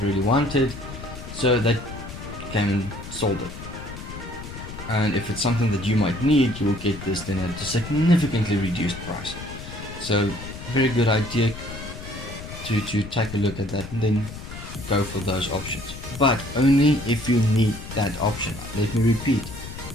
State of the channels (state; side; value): noise; left; rumble, 11 dB below the sound